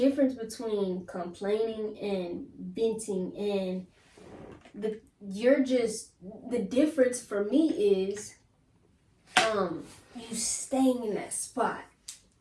between complaining and venting, and the difference for me is, you staying in that spot.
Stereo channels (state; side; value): identical; both; correlation 1.00